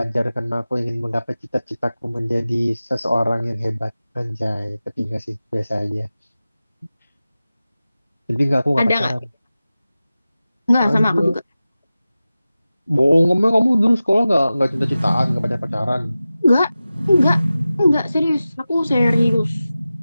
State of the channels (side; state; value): both; inverted; correlation -0.95